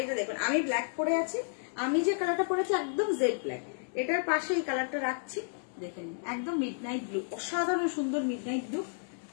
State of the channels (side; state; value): right; silent; digital silence